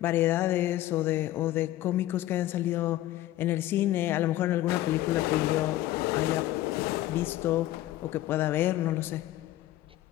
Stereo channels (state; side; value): quieter; right; 14.8 dB